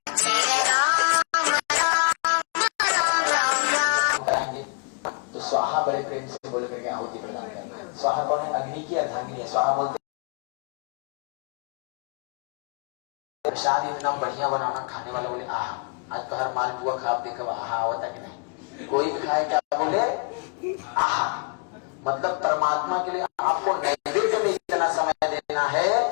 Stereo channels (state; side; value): quieter; right; 36.2 dB